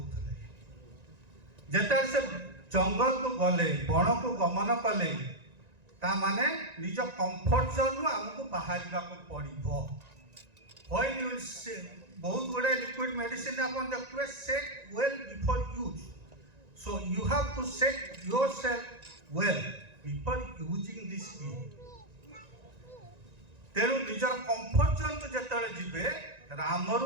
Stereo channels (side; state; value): left; late; 1.9 ms